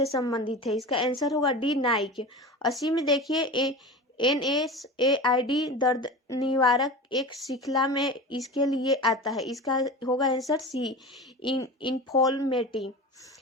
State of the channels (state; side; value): normal; both; correlation 0.31